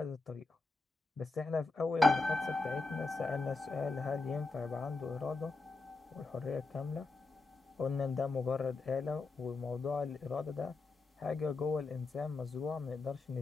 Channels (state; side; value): quieter; right; 3.6 dB